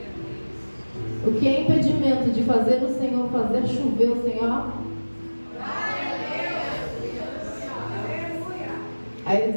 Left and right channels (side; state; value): both; inverted; correlation -1.00